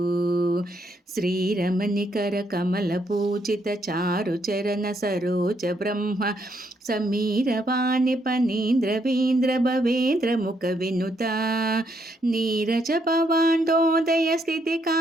ಶ್ರೀರಮಣಿಕರ ಕಮಲ ಪೂಜಿತ ಚಾರು ಚರಣ ಸರೋಜ ಬ್ರಹ್ಮ ಸಮೀರವಾಣಿ ಪನೀಂದ್ರವೀಂದ್ರ ಭವೇಂದ್ರ ಮುಖ ವಿನುತ ನೀರಜ ಭವಾಂಡೋದಯ ಸ್ಥಿತಿ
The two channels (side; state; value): both; normal; correlation 0.75